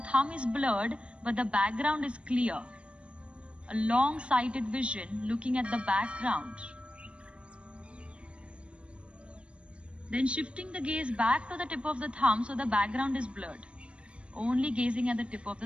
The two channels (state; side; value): late; left; 0.059 ms